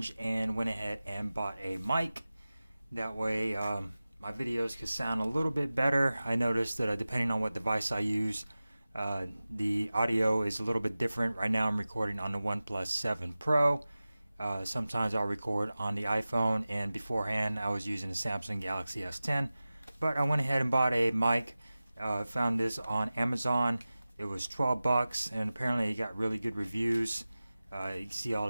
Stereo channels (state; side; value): inverted; both; correlation -0.97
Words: and went ahead and bought a mic. That way my videos could sound a little bit better. I noticed that depending on what device I use, the audio is a little bit different. Right now I'm recording on the OnePlus 7 Pro. Sometimes I'll record on the iPhone, and beforehand I was using the Samsung Galaxy S10. But I went ahead and bought a mic. Found this on Amazon. It was 12 bucks, and apparently it got really good reviews. You can see all